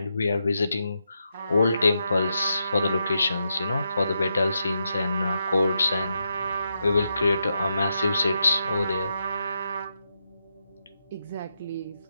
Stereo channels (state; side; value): inverted; both; correlation -0.84